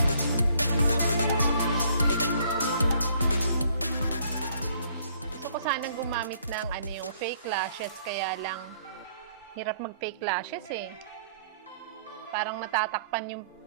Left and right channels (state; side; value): inverted; both; correlation -0.62